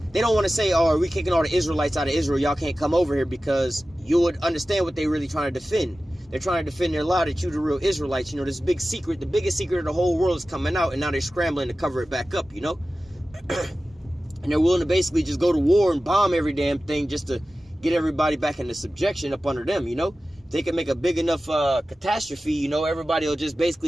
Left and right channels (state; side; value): normal; both; correlation 0.95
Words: don't want to say, oh, are we kicking all the Israelites out of Israel? Y'all can't come over here, because you would understand what they're really trying to defend. They're trying to defend their lie that you the real Israelites. You know, this big secret, the biggest secret of the whole world is coming out, and now they're scrambling to cover it back up, you know. And they're willing to basically just go to war and bomb every damn thing just to get everybody back into subjection up under them, you know. If they can make a big enough catastrophe, you know, everybody will just